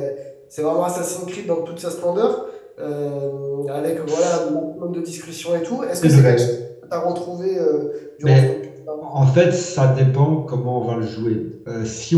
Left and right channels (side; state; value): both; identical; correlation 1.00